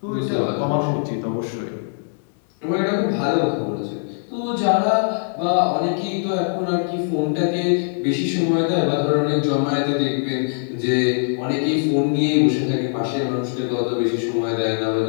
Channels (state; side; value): silent; right; 65 dB below the other